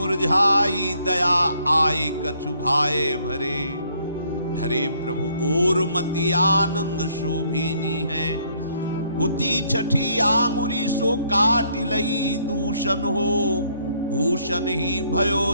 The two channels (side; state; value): both; inverted; correlation -0.67